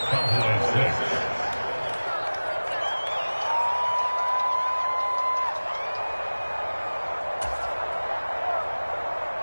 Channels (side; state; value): both; inverted; correlation -1.00